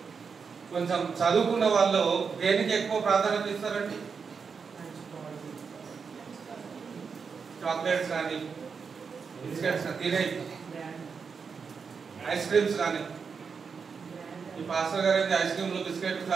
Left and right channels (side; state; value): left; quieter; 5.7 dB